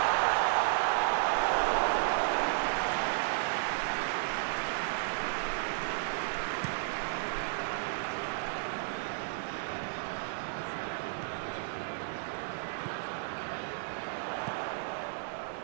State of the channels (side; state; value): left; silent; digital silence